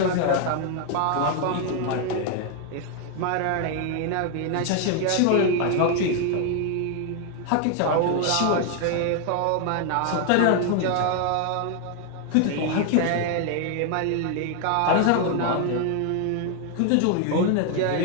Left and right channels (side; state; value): both; different; correlation 0.00